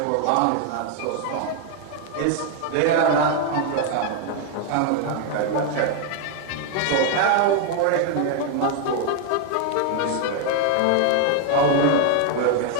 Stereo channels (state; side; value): different; both; correlation 0.00